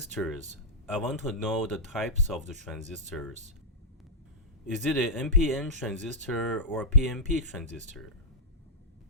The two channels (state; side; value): normal; both; correlation -0.07